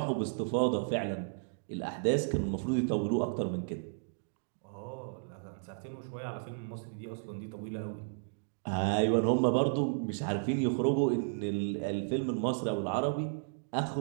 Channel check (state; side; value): silent; left; digital silence